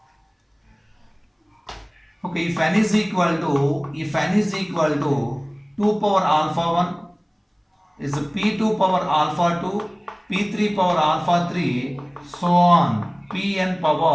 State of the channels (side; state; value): both; identical; correlation 1.00